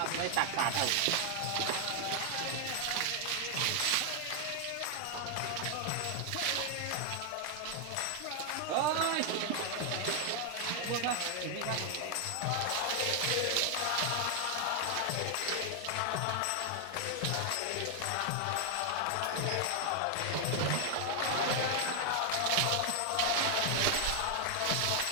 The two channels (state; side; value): different; both; correlation 0.00